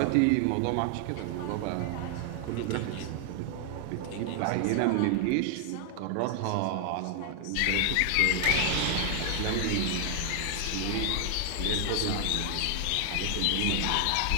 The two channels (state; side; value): different; both; correlation 0.00